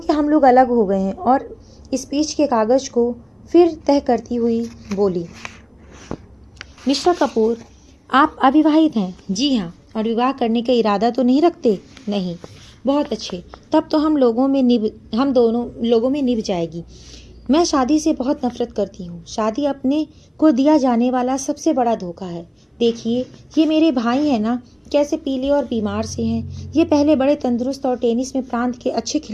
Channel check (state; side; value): identical; both; correlation 1.00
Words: हम लोग अलग हो गए हैं। और स्पीच के कागज़ को फिर तह करती हुई बोली। मिस्टर कपूर, आप अविवाहित हैं? जी हाँ। और विवाह करने का इरादा तो नहीं रखते? नहीं। बहुत अच्छे, तब तो हम दोनों लोगों में निभ जाएगी। मैं शादी से बहुत नफरत करती हूँ। शादी अपने को दिया जाने वाला सबसे बड़ा धोखा है। देखिए, ये मेरे भाई हैं ना, कैसे पीले और बीमार से हैं। ये पहले बड़े तंदुरुस्त और टेनिस में प्रांत के अच्छे